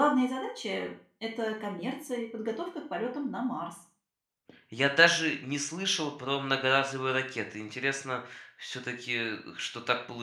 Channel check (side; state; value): both; identical; correlation 1.00